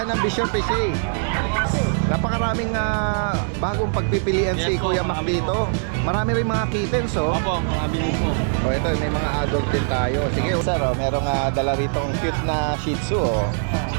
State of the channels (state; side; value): silent; left; digital silence